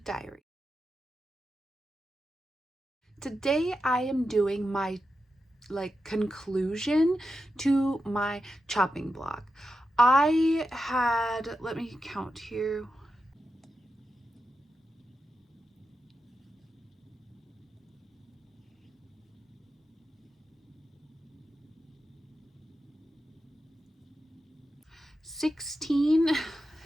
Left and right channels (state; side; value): normal; both; correlation 0.89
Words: Diary. Today I am doing my conclusion to my chopping block. I had, let me count here.